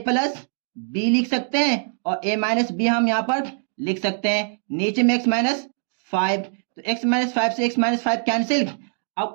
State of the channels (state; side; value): silent; left; digital silence